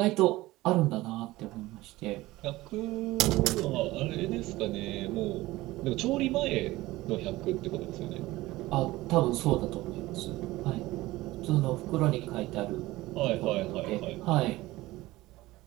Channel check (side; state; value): left; quieter; 18.4 dB